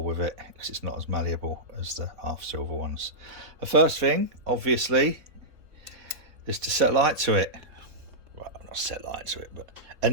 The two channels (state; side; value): late; left; 4.0 ms